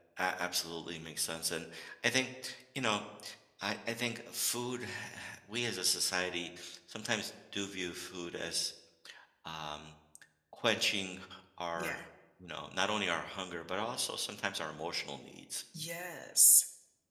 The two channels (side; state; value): both; identical; correlation 1.00